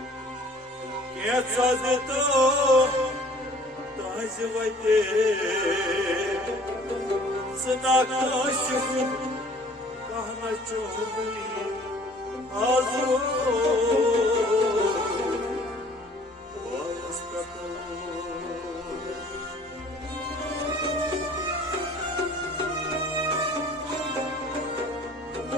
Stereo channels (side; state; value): both; normal; correlation 0.53